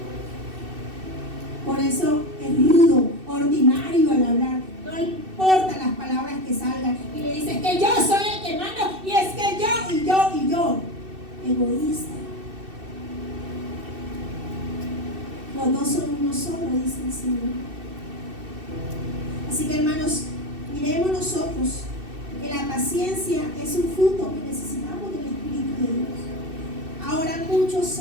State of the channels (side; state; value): left; late; 2.6 ms